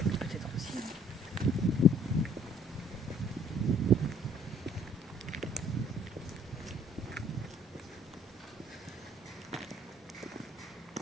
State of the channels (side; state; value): both; normal; correlation 0.60